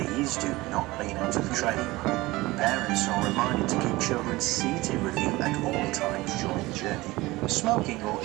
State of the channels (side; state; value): left; quieter; 20.1 dB